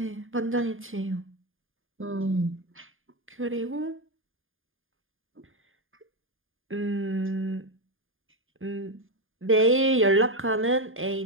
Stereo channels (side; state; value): left; late; 0.59 ms